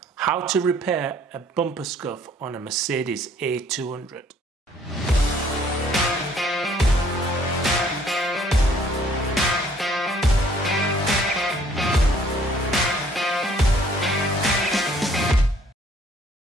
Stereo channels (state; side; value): normal; both; correlation 0.60